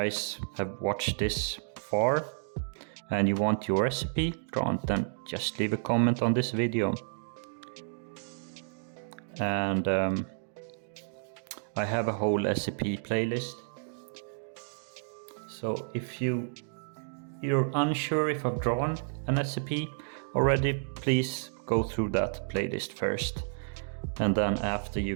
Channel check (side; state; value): left; silent; digital silence